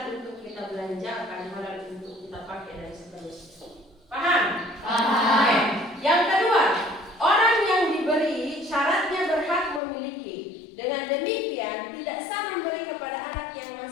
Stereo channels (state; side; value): drops out; right; at 9.8 s